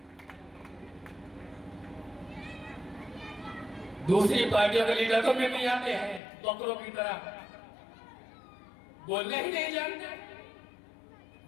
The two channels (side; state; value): right; drops out; at 6.2 s